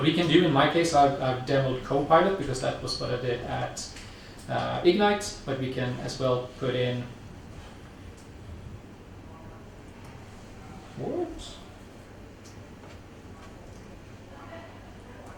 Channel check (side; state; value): both; identical; correlation 1.00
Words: we can do, in my case, I've demoed Copilot because that was what I did at Ignite, but we can as well put in what?